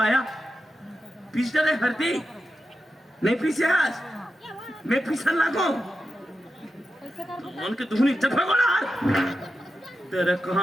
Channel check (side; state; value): both; normal; correlation 0.89